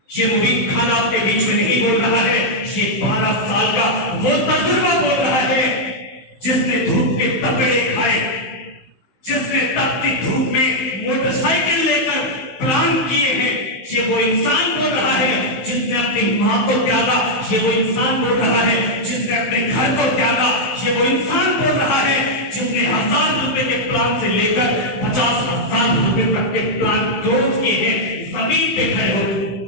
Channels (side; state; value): right; late; 16 ms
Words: ये मुबीन खान आपके बीच में नहीं बोल रहा है, ये 12 साल का वो तजुर्बा बोल रहा है जिसने धूप के तपेड़े खाए, जिसने जिसने तपती धूप में मोटरसाइकिल लेकर प्लान किए हैं, ये वो इंसान बोल रहा है जिसने अपनी माँ को त्यागा। ये वो इंसान बोल रहा है जिसने अपने घर को त्यागा। ये वो इंसान बोल रहा है जिसने 1000 रुपए के प्लान से लेकर 50,000 रुपए तक के प्लान क्लोज किए हैं जमीन पे खड़े हो।